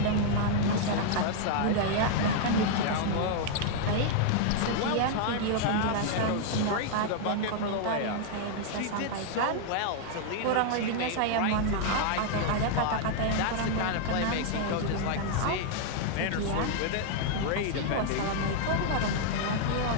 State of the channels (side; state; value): both; different; correlation 0.00